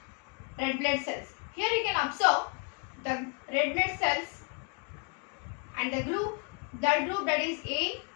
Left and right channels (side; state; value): right; quieter; 34.9 dB